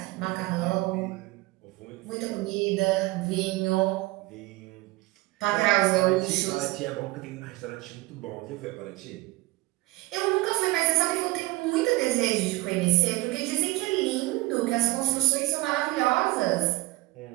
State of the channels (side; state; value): left; quieter; 20.0 dB